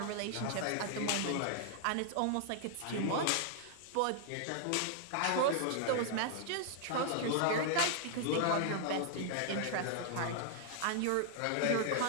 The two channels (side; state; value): both; different; correlation 0.00